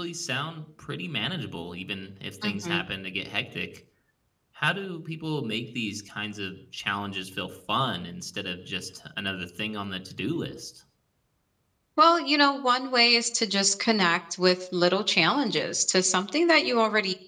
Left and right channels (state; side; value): identical; both; correlation 1.00